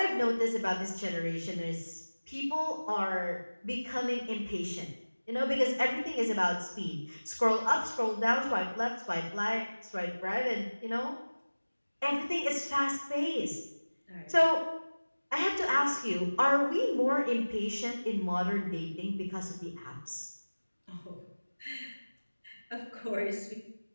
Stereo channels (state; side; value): inverted; both; correlation -1.00